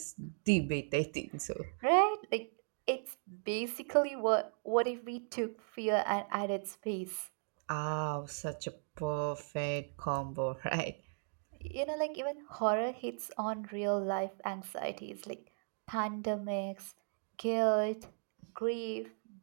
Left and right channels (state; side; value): silent; left; digital silence